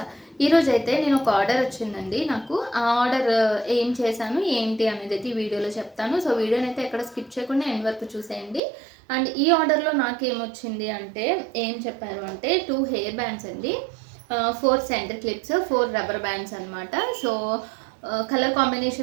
ఈరోజు అయితే నేను ఒక ఆర్డర్ వచ్చిందండి. నాకు ఆ ఆర్డర్ ఏం చేశాను ఏంటి అనేది అయితే ఈ వీడియోలో చెప్తాను. సో వీడియోని అయితే ఎక్కడ స్కిప్ చేయకుండా ఎండ్ వరకు చూసేయండి. అండ్ ఈ ఆర్డర్లో నాకేమొచ్చింది అంటే ఏం చెప్పారు అంటే 2 హెయిర్ బ్యాండ్స్ అండి, 4 సెంటర్ క్లిప్స్, 4 రబ్బర్ బ్యాండ్స్ అనమాట. సో కలర్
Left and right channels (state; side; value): drops out; left; at 8.6 s